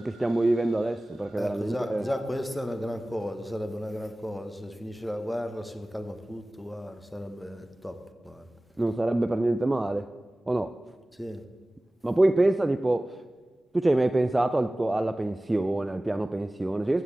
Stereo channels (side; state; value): both; normal; correlation 0.97